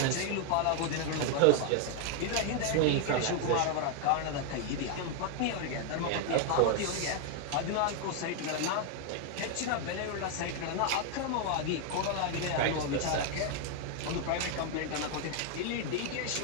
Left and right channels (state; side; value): different; both; correlation 0.00